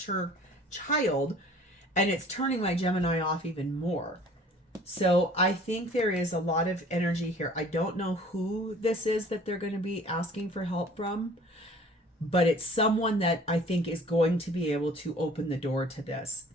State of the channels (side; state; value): both; normal; correlation 0.50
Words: child, and it's turning my Gemini off even more. So I think there is a lot of energy here. I don't know who this is that they're going to be asking for help from, but it's someone that I think is going to be able to open the door to this,